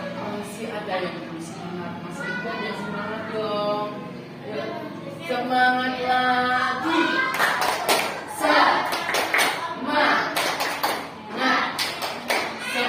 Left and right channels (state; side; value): identical; both; correlation 1.00